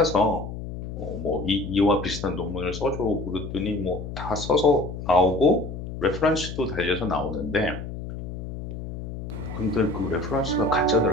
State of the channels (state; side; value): noise; left; hum, 8 dB below the sound